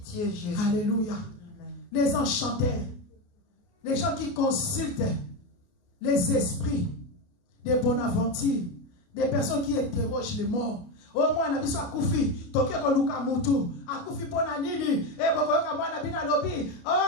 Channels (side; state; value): right; late; 29 ms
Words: Jésus. Alléluia. Amen. Les enchanteurs, les gens qui consultent les esprits des Bonaventure, des personnes qui interrogent les morts. Au moins, on a besoin de Koufi, Tokyo Luka Moutou, à Koufi Ponanini, et Bokoka Bonabina Lobi,